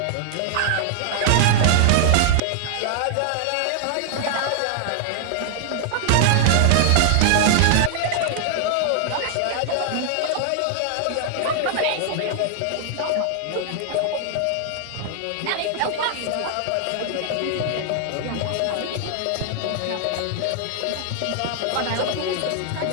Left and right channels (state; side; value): different; both; correlation 0.00